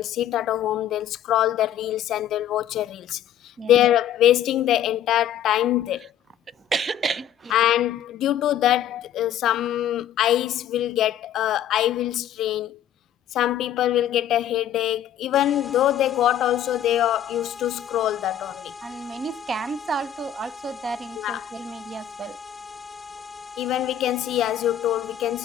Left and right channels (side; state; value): right; quieter; 10.2 dB